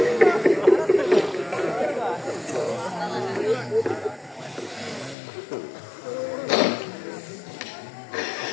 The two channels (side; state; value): right; drops out; at 5.2 s